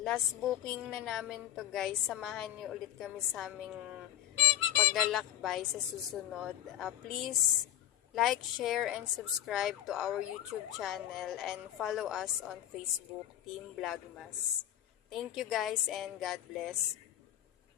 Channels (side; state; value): right; quieter; 12.3 dB